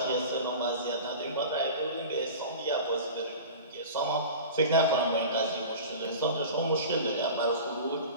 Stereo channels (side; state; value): both; inverted; correlation -0.35